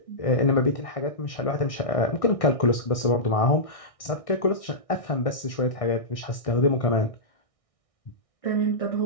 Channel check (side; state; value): right; late; 1.6 ms